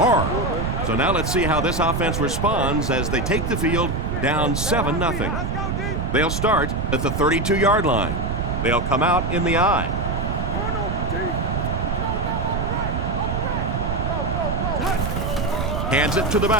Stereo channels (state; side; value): noise; right; rumble, 1 dB below the sound